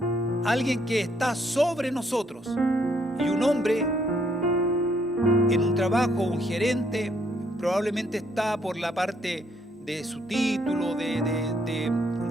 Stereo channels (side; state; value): both; normal; correlation 0.70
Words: Alguien que está sobre nosotros. Y un hombre en un trabajo, un gerente, probablemente está por la parte de su título,